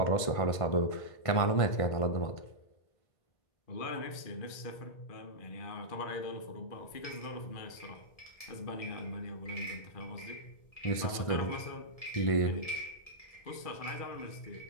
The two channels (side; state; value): right; late; 1.5 ms